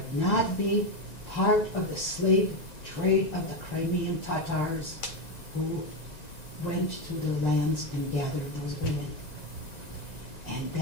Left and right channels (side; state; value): right; late; 1.9 ms